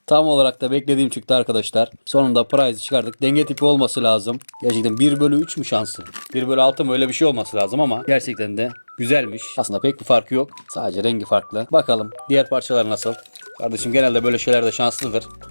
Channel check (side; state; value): both; inverted; correlation -1.00